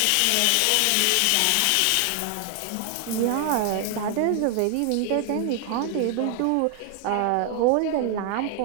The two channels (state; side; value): different; both; correlation 0.00